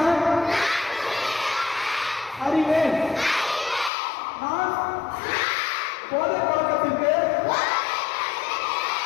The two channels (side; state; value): right; drops out; at 3.9 s